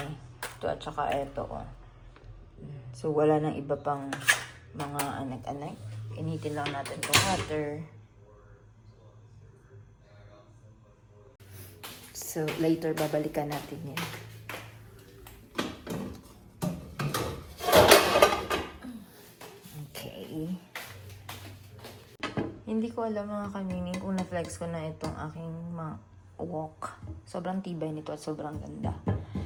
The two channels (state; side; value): identical; both; correlation 1.00